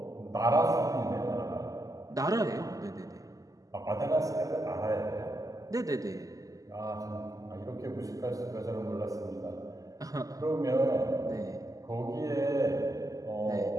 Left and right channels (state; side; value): late; left; 0.17 ms